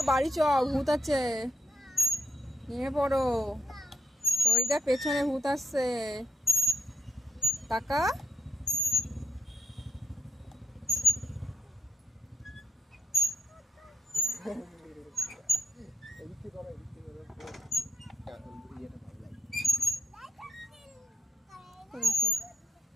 বাড়ি চ, ভূত আছে, নিয়ে পড়ো। ওই দেখ পেছনে ভূত আসছে, টাকা।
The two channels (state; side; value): normal; both; correlation 0.81